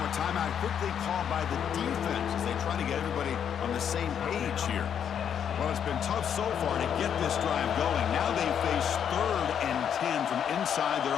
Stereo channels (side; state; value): right; quieter; 8.4 dB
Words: a timeout quickly called by the defense as they try to get everybody on the same page here. Well, it's been tough so far to get this drive going. Now they face 3rd and 10 from inside their